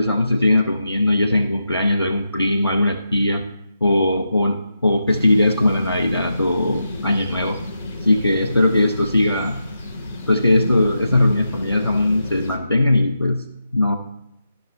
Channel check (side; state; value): both; inverted; correlation -0.86